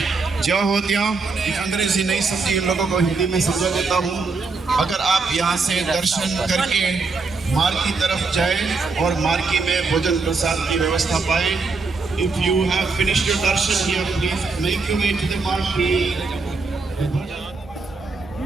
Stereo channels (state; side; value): quieter; left; 4.1 dB